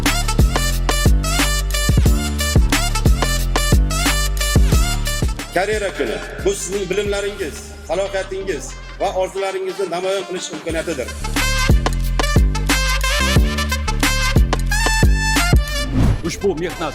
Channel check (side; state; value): both; identical; correlation 1.00